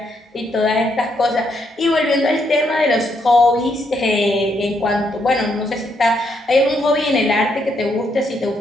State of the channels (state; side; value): normal; both; correlation 0.76